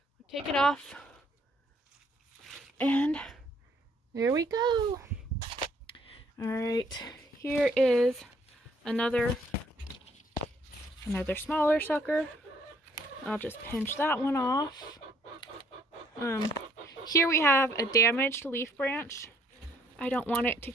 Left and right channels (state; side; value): normal; both; correlation 0.65